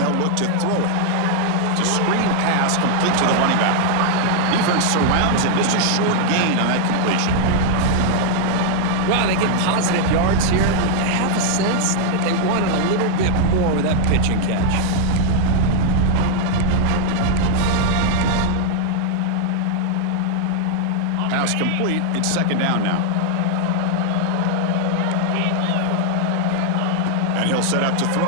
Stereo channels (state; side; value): different; both; correlation 0.00